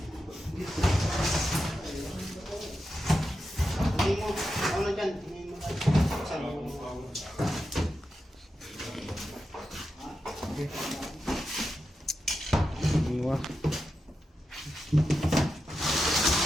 Hindi mo, ano dyan? Hindi mo lang. Saan mo? Iwa.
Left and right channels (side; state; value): both; normal; correlation 0.89